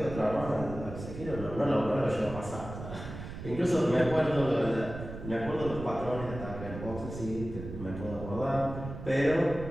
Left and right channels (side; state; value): right; noise; rumble, 10 dB below the sound